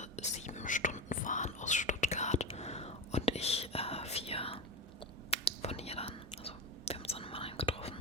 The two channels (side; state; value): both; normal; correlation 0.17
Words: 7 Stunden fahren aus Stuttgart und ich 4 von hier dann. Also wir haben uns dann in Mannheim getroffen